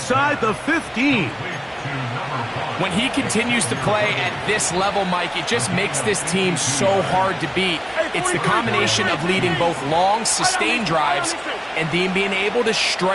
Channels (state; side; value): identical; both; correlation 1.00